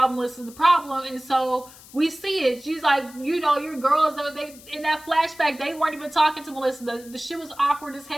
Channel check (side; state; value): left; noise; hiss, 21 dB below the sound